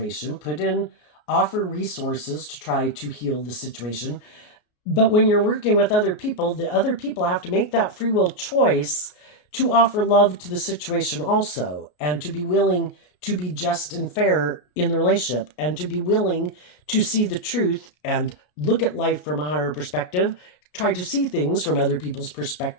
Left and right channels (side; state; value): right; late; 33 ms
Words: offer resources to try to heal the situation. But when you're working with other people, the other people have to make that free will choice to offer love to the situation also, and to be willing to be just and fair in the relationship, and to be willing to see the truth and look at life from a higher perspective, try to see things from other people's